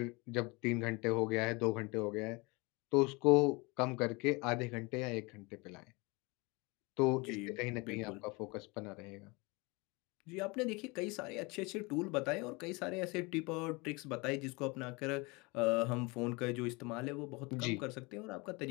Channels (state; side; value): quieter; right; 26.6 dB